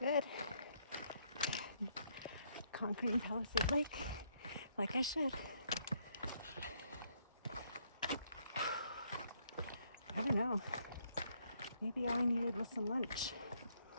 Conquering Palisade Lake, like I should. I don't know. Maybe all I needed was some lunch.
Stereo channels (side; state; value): both; inverted; correlation -0.71